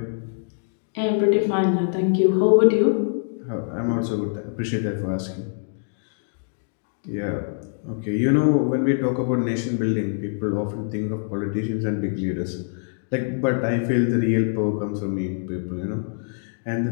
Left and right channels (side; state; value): right; silent; digital silence